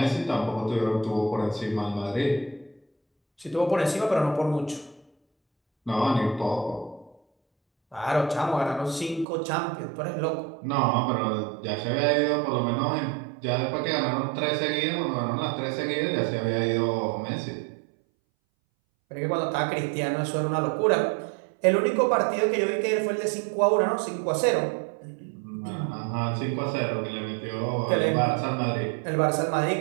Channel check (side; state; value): left; drops out; at 9.2 s